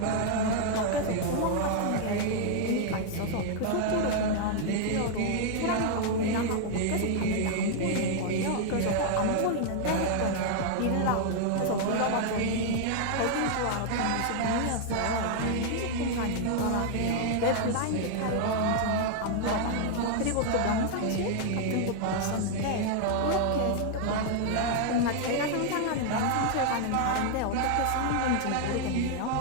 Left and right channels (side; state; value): both; different; correlation 0.00